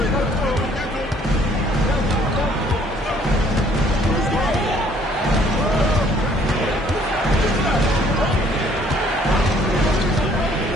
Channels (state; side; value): normal; both; correlation 0.61